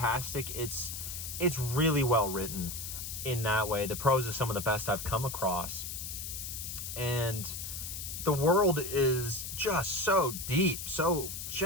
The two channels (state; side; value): noise; left; hiss, 6 dB below the sound